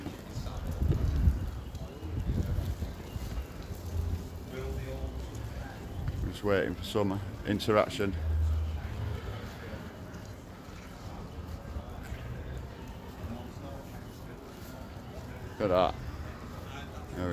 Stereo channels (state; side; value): identical; both; correlation 1.00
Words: Just waiting for some interaction. Look at that. There